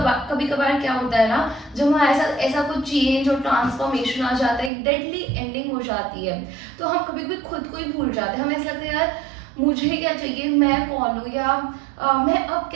कभार क्या होता है ना, जब वहाँ ऐसा कुछ चेंज और ट्रांसफॉर्मेशन आ जाता है, एक डेडली एंडिंग हो जाती है, तो हम कभी कभी खुद को ही भूल जाते हैं। हमें ऐसा लगता है यार मुझे क्या चाहिए, मैं कौन हूँ, या मैं अब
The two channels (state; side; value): drops out; left; at 4.7 s